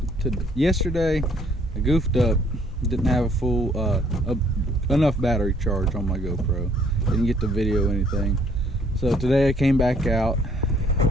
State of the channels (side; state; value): both; normal; correlation 0.63